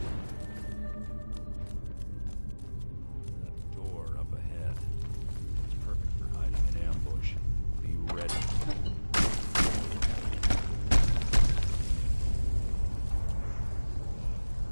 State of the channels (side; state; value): both; inverted; correlation -1.00